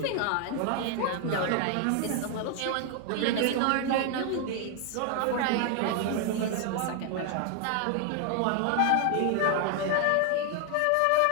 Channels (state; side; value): different; both; correlation 0.01